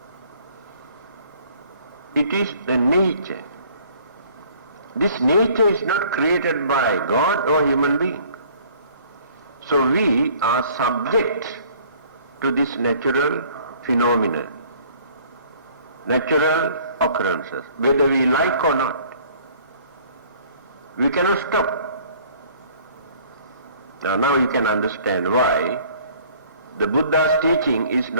It is the nature. This nature is not created by God or human being. So we are subject to this natural phenomena, natural occurrences, whether we like or not. We cannot stop. Now you can understand why the Buddha's teaching is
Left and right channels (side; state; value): both; inverted; correlation -0.55